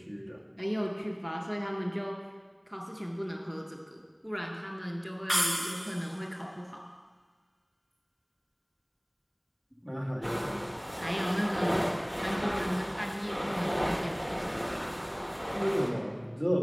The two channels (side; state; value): both; identical; correlation 1.00